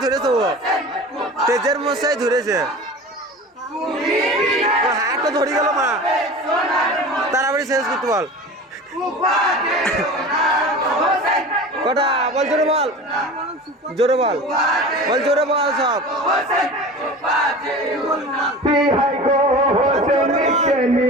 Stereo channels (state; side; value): normal; both; correlation 0.35